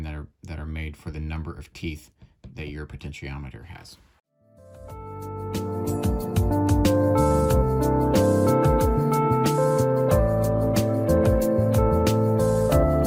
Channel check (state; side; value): identical; both; correlation 1.00